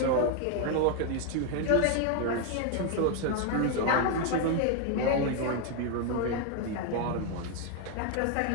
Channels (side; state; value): both; different; correlation 0.01